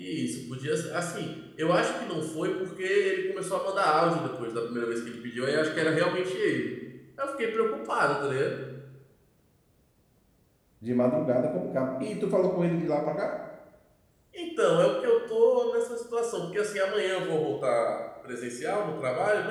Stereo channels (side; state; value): both; identical; correlation 1.00